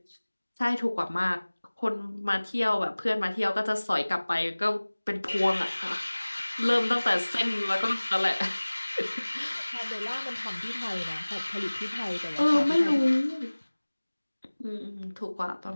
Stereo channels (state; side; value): inverted; both; correlation -1.00